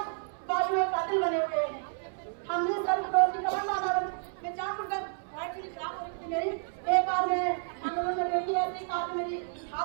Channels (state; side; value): silent; left; 57 dB below the other